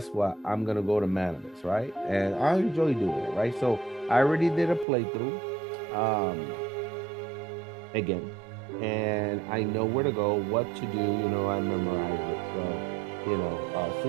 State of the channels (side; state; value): left; drops out; at 4.9 s